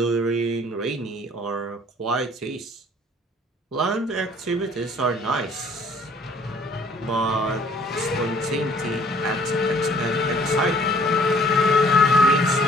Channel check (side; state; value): both; normal; correlation 0.56